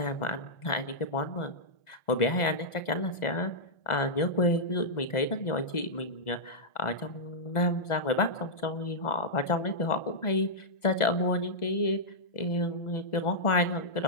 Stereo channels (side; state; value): right; late; 1.4 ms